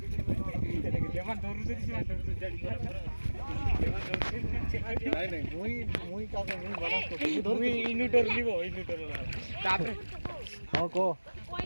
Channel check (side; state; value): both; inverted; correlation -1.00